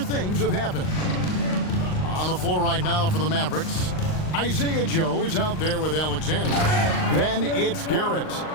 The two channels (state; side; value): late; right; 39 ms